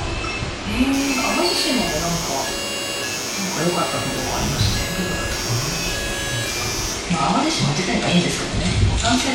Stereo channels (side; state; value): both; identical; correlation 1.00